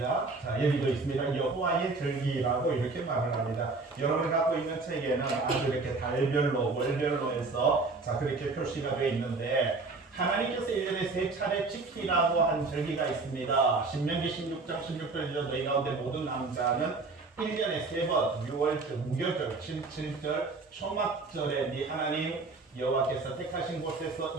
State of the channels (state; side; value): quieter; left; 3.8 dB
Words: 자, 여기도 있습니다. 여호와의 절기라고 이렇게 말을 합니다. 여러분이 갖고 있는 책에는 아주 이렇게 달별로, 월별로 해서 자, 그렇게 표시가 되어 있는데 하나님께서 1년에 3차례 지키라고 한 절기가 있습니다. 신명기 16장 16절이죠. 너희 가운데 모든 남자는 1년에 3번, 6월절, 무교절, 7절, 초막절에 네 하나님 여호와께서 택하신 곳에서